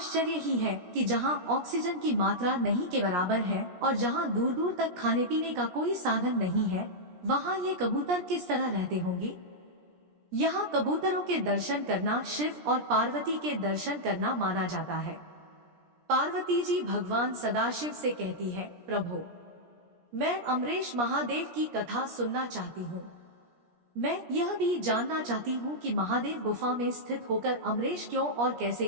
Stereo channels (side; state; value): left; late; 17 ms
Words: ही है कि जहां ऑक्सीजन की मात्रा नहीं के बराबर है और जहां दूर दूर तक खाने पीने का कोई साधन नहीं है, वहां ये कबूतर किस तरह रहते होंगे। यहाँ कबूतरों के दर्शन करना शिव और पार्वती के दर्शन करना माना जाता है। पार्वती जी भगवान सदाशिव से कहती है, प्रभु, मैं अमरेश महादेव की कथा सुनना चाहती हूँ। मैं यह भी जानना चाहती हूँ कि महादेव गुफा में स्थित होकर अमरेश क्यों और कैसे